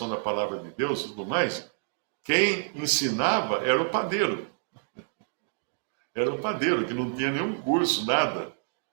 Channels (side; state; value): left; silent; digital silence